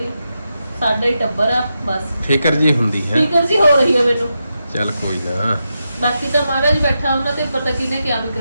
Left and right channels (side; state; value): both; inverted; correlation -0.87